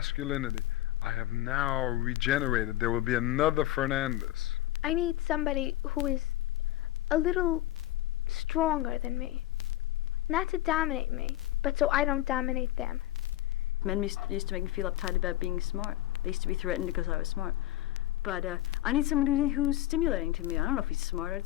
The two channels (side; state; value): right; quieter; 14.7 dB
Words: I have now regenerated. There will be another Fernandez. I need somebody who is a little stronger than me. Not to dominate me, but so I don't dominate them. Men used to make me feel uptight about being smart. They used to be threatened because I was smart. But I need someone who's stimulating to me. I don't know if he's smart.